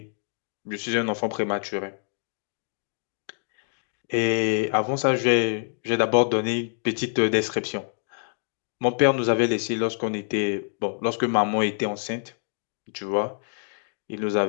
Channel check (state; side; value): silent; right; 61 dB below the other